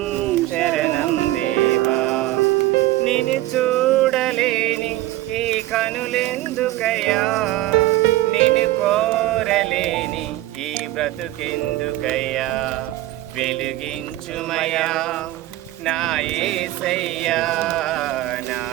శరణం దేవా. నిన్ను చూడలేని ఈ కనులెందుకయ్యా, నిన్ను కోరలేని ఈ బ్రతుకెందుకయ్యా. వెలుగించుమయా నా యేసయ్యా, నా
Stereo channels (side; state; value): left; quieter; 16.2 dB